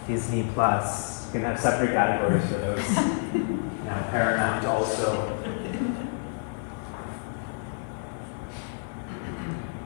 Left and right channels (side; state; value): right; silent; digital silence